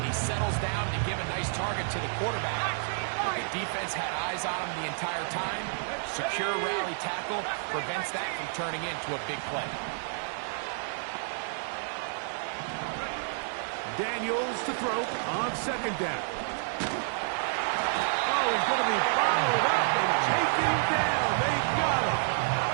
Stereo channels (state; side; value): silent; left; 58 dB below the other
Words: he settles down to give a nice target to the quarterback. But the defense had eyes on him the entire time. Secure rally tackle prevents that from turning into a big play. Daniels to throw on 2nd down. Oh, he's going to be followed up and taken down. They got him.